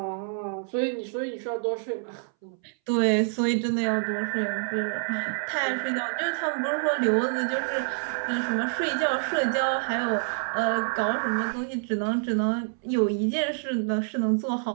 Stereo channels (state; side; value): silent; left; 60 dB below the other